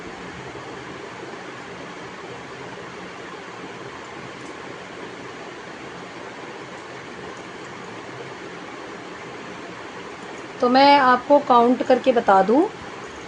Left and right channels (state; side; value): identical; both; correlation 1.00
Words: तो मैं आपको काउंट करके बता दूं।